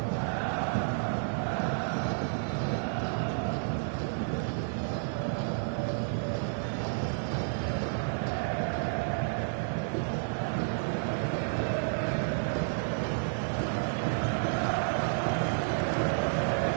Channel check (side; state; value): left; silent; digital silence